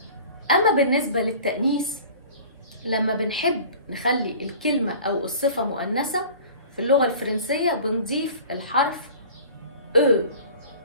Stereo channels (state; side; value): inverted; both; correlation -0.43